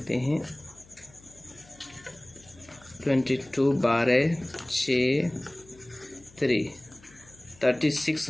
हैं, 22 12 6 3,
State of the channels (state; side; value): noise; left; hum, 25 dB below the sound